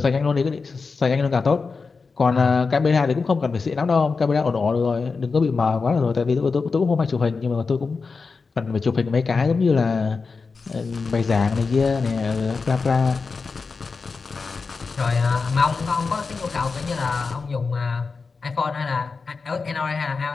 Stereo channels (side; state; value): right; quieter; 4.6 dB